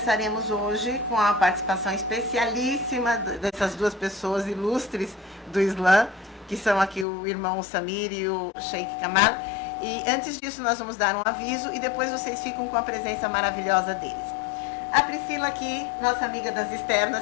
hoje com a participação especialíssima dessas duas pessoas ilustres do Islã, que são aqui o irmão Samir e o Sheikh Kamal. E antes disso nós vamos dar um aviso e depois vocês ficam com a presença maravilhosa deles. A Priscila aqui, nossa amiga das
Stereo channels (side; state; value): right; drops out; at 7.1 s